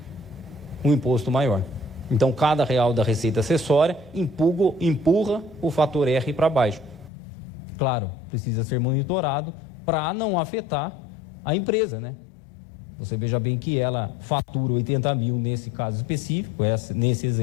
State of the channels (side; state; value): right; drops out; at 7.1 s